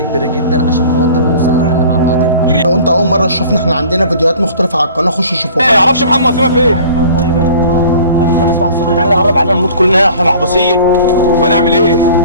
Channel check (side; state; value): both; inverted; correlation -0.47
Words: كبيره جدا عشان خاطر نوصل لحل مع بعضينا. لو انت اول مره تشوفنا، احنا عندنا فيديوهات مختلفه على القناه، خش شوفوها. ما يعرفش محمد وسيمة فين؟ طيب ايه؟ نسمع الصوت ده قرب علينا نموت كلنا، احنا محبوسين. ونعمل ايه؟